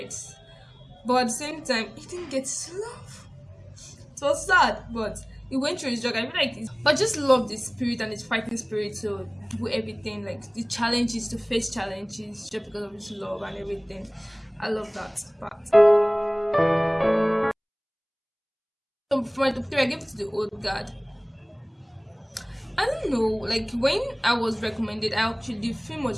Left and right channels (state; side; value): identical; both; correlation 1.00